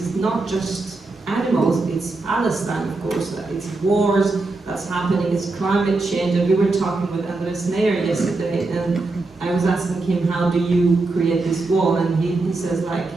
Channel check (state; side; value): quieter; left; 3.4 dB